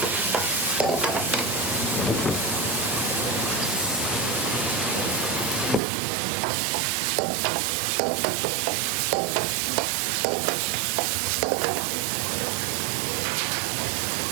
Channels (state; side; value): drops out; left; at 5.8 s